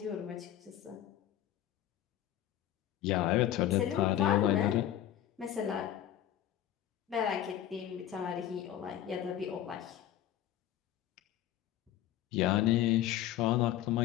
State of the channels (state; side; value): quieter; right; 11.8 dB